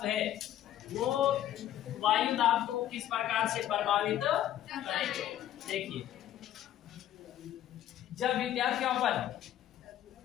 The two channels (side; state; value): right; quieter; 12.0 dB